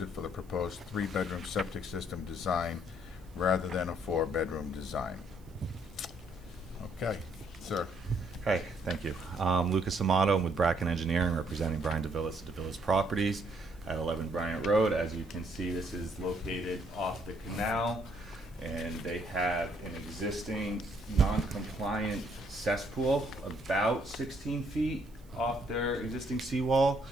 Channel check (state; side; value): noise; right; hiss, 30 dB below the sound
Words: for the proposed 3-bedroom septic system design rather than a 4-bedroom design. Okay. Sir. Hi, thank you. Lucas Amato, I'm with Bracken Engineering, representing Brian DeVillis of DeVillis Properties at 11 Bryant Road. As you can see, this is located off the canal, and they have an existing non-compliant cesspool about 16 feet off their existing seawall.